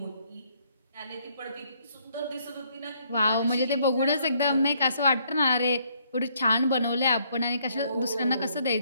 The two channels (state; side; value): inverted; both; correlation -0.69